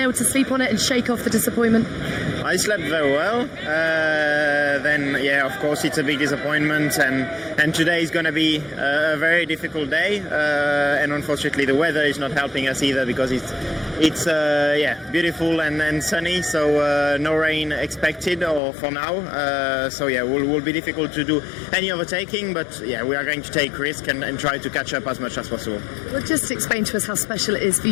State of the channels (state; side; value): drops out; right; at 18.6 s